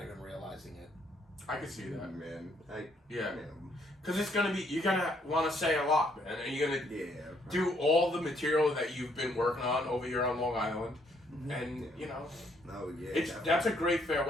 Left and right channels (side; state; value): both; normal; correlation 0.69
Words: even realizing it. I can see that. Man, Yeah. Because it's gonna be, you're gonna want to say a lot, man. And you're gonna do all the material that you've been working on over here on Long Island. And, you know, that's a great